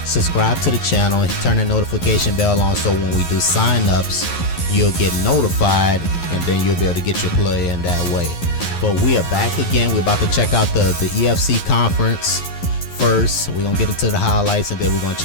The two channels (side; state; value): right; late; 11 ms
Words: subscribe to the channel and turn the notification bell on so when we do sign-ups, you'll get notified and then you'll be able to get your player in that way. But we are back again. We're about to check out the EFC conference first. We're going to get into the highlights and then we're going to